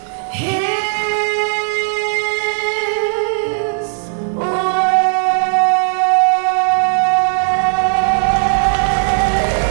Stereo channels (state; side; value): silent; left; 69 dB below the other